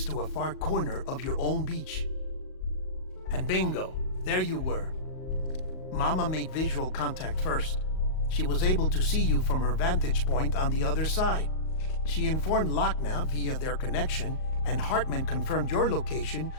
to a far corner of your own beach. And bingo, there you were. Mama made visual contact first. She was able to see you from her vantage point on the other side. She informed Lochna via their connection, and Hartman confirmed your location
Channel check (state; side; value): late; right; 38 ms